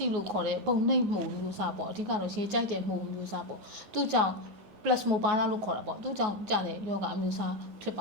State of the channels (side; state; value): left; late; 9.4 ms